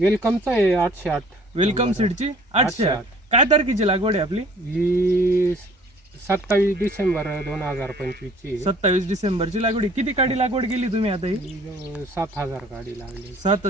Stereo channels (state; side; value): normal; both; correlation 0.54